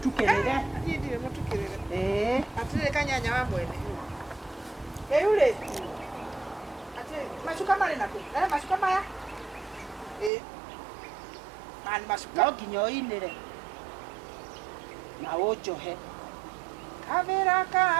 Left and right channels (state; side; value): drops out; left; at 10.3 s